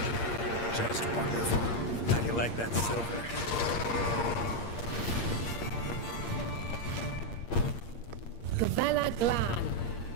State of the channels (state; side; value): late; right; 8.6 ms